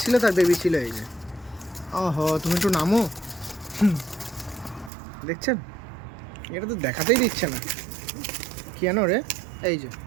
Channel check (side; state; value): left; drops out; at 4.9 s